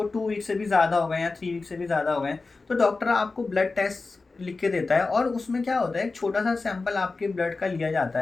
2 वीक से भी ज़्यादा हो गए या 3 वीक से भी ज़्यादा हो गए, तो डॉक्टर आपको ब्लड टेस्ट लिख के देता है और उसमें क्या होता है, एक छोटा सा सैंपल आपके ब्लड का लिया जाता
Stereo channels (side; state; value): right; quieter; 3.8 dB